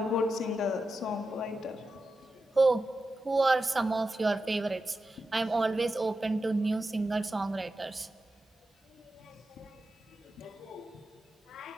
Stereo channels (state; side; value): normal; both; correlation 0.91